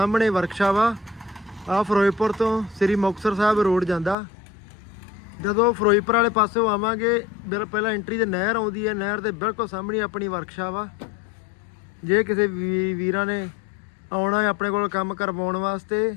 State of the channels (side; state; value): right; drops out; at 4.2 s